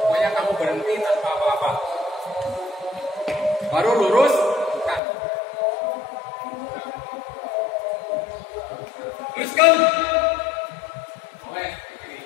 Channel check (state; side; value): drops out; right; at 5.0 s